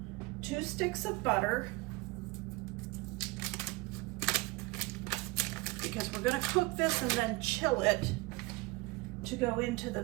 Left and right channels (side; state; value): left; quieter; 23.7 dB